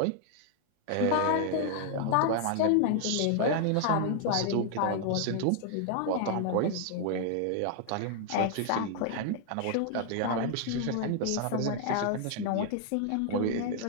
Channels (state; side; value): different; both; correlation 0.00